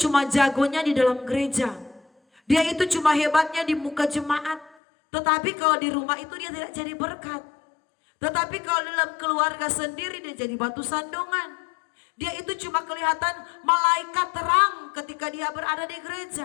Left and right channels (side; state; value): right; drops out; at 4.8 s